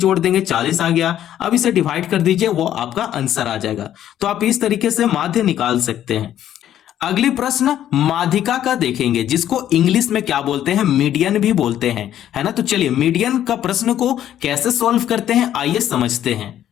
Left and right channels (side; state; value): right; quieter; 11.3 dB